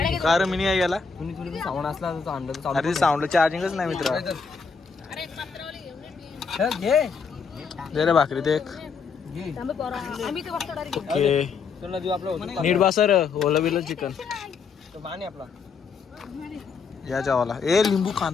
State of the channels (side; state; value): right; quieter; 5.4 dB